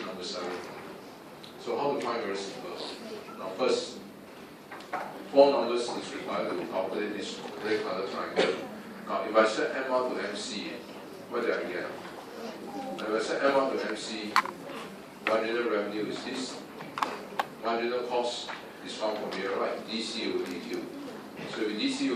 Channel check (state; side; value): identical; both; correlation 1.00